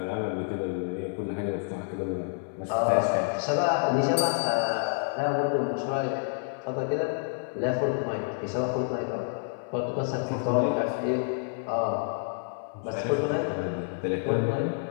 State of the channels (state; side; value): silent; right; 59 dB below the other